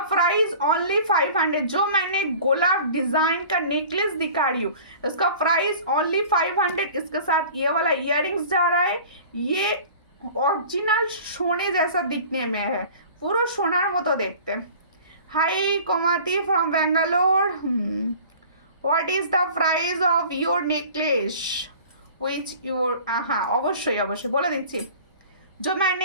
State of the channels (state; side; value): inverted; both; correlation -0.44